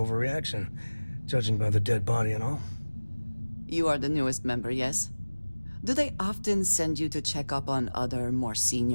judging by the dead body and all. You are the newest member, yes? Do they often send you to check up on other, more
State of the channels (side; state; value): both; inverted; correlation -1.00